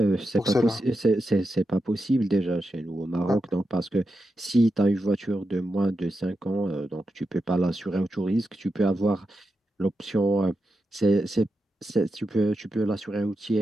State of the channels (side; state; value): both; normal; correlation 0.88